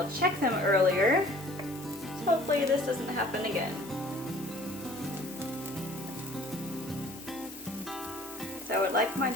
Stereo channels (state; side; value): noise; left; hiss, 19 dB below the sound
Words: check them earlier. So hopefully this doesn't happen again. So I would like my